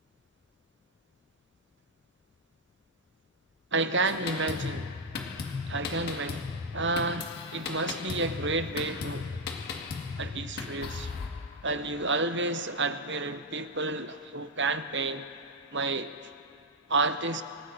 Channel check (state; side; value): normal; both; correlation 0.01